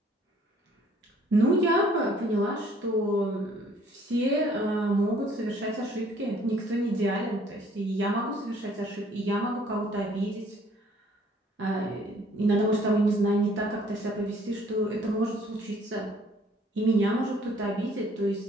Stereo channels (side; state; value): both; normal; correlation 0.60